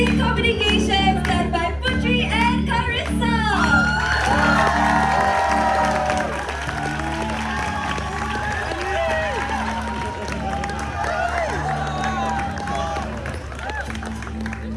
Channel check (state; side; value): identical; both; correlation 1.00